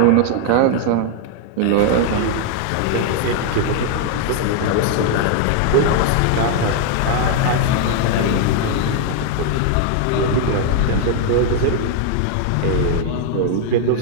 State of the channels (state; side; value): different; both; correlation 0.00